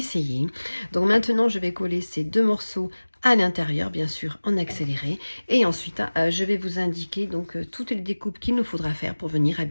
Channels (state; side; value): inverted; both; correlation -1.00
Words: Donc maintenant, je vais coller ces deux morceaux à l'intérieur, bien sûr en accéléré, et ensuite je vais vous indiquer donc toutes les découpes qu'il nous faudra faire pour venir